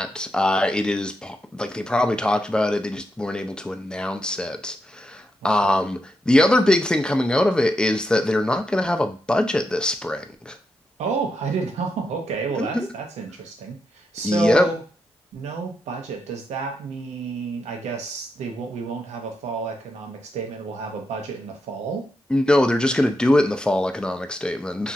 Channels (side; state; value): both; normal; correlation 0.84